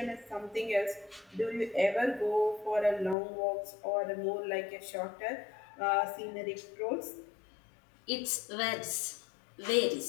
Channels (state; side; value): drops out; right; at 3.2 s